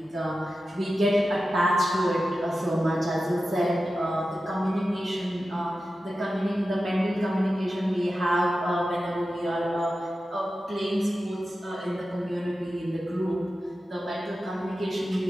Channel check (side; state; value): both; normal; correlation 0.93